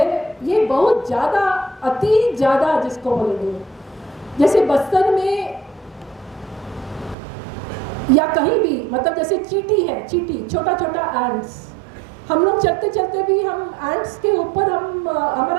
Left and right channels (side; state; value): left; drops out; at 7.2 s